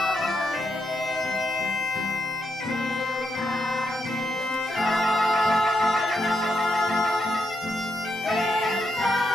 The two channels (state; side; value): normal; both; correlation 0.81